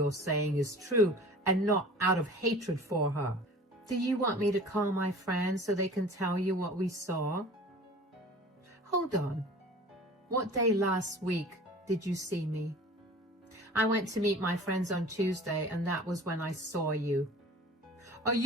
saying is true and not out of hatred for her." "Do you want me to call my friends so they can tell you what we saw?" "Hold on. What day last week did you see me?" "I went to meet my friends on Tuesday, and that was when I saw you." "Are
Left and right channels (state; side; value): normal; both; correlation 0.43